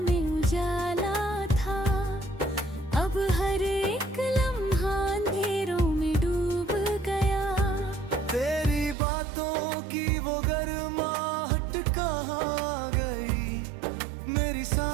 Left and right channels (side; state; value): left; drops out; at 9.0 s